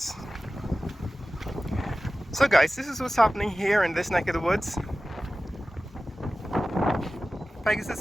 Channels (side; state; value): both; normal; correlation 0.96